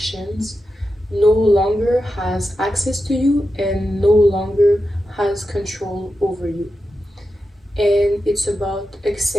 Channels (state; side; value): normal; both; correlation 0.90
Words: no longer has access to you and no longer has control over you. And it's about